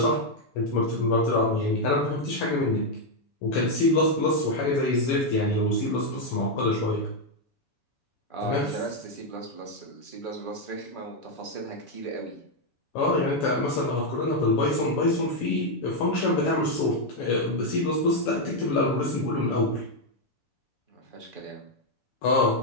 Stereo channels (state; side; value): late; right; 7.0 ms